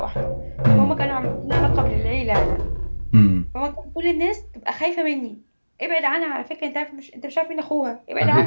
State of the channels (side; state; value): both; inverted; correlation -1.00